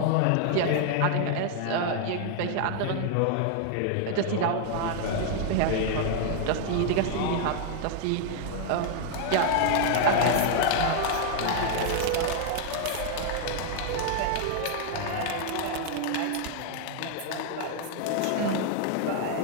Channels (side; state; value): both; different; correlation 0.00